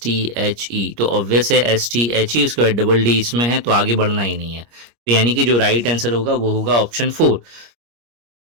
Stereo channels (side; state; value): left; late; 25 ms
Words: तो ऑब्वियस है STHE, उसके बाद डबल D इसमें है तो आगे बढ़ना ही नहीं है। तो यानी कि जो राइट आंसर होगा वो होगा ऑप्शन 4।